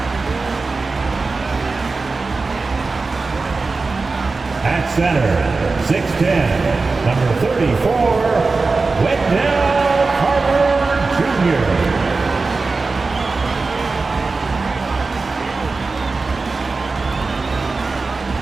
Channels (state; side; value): quieter; left; 3.9 dB